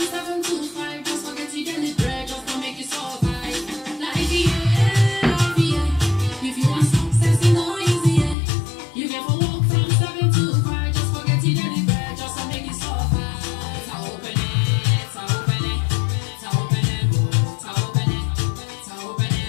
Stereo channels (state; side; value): drops out; right; at 8.3 s